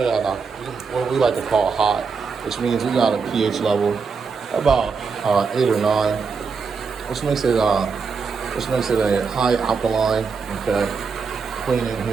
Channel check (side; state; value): left; quieter; 5.3 dB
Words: it at what we like to call hot, which means we got a pH level about 8 or 9, which makes it a high alkaline, okay, cleaning